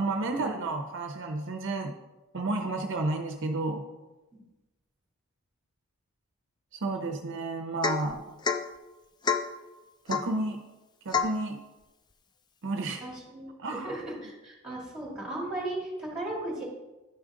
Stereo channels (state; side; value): normal; both; correlation 0.36